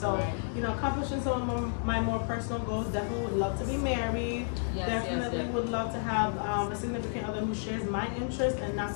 accomplishing some of my more personal goals, definitely would love to be married. Definitely would love to have a significant other who shares my interests and not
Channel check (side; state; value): right; silent; digital silence